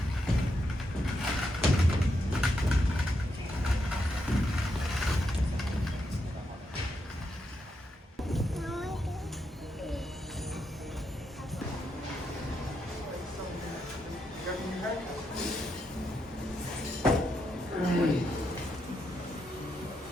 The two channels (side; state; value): both; normal; correlation 0.82